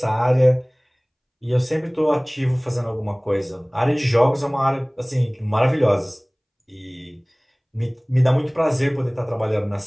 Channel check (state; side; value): identical; both; correlation 1.00